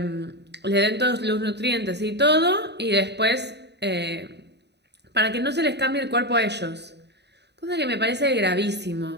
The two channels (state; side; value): late; left; 0.49 ms